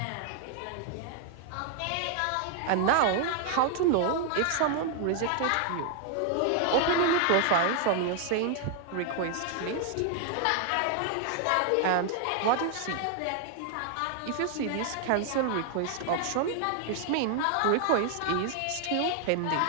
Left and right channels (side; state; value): both; different; correlation 0.00